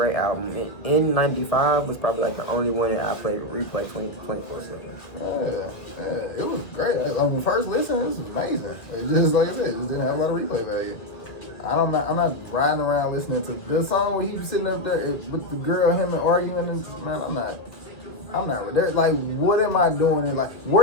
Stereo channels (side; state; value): right; late; 1.7 ms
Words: album. And N95 was probably like the only one that I played replay 24/7. Yeah, it was great. On the first listen, it was amazing. It just, like I said, it just didn't have a lot of replay value. I'm not riding around listening to the song where he was sitting up there with the girl, him and arguing, and man, I'm not. Like, what am I doing? And like,